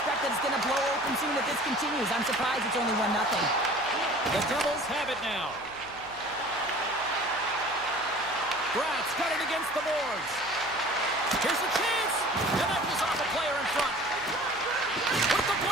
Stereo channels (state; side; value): noise; right; hum, 23 dB below the sound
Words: that it's going to blow open soon if this continues. I'm surprised it's only 1-0. The Devils have it now. Bratz got it against the boards. Here's a chance. And that was off a player in front. With the